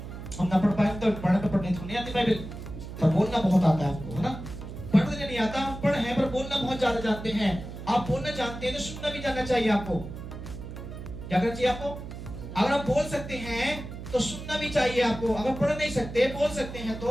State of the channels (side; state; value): right; noise; hum, 10 dB below the sound